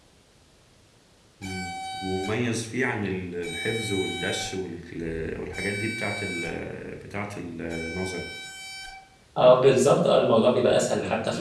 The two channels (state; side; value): identical; both; correlation 1.00